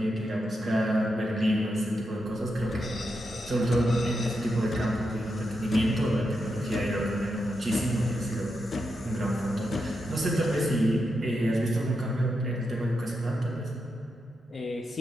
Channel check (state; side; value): normal; both; correlation 0.85